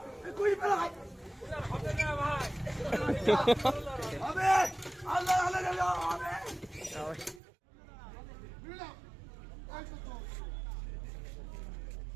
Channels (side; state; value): left; drops out; at 7.4 s